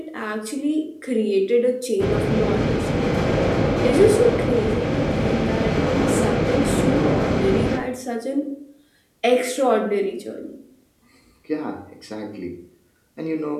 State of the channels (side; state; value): both; identical; correlation 1.00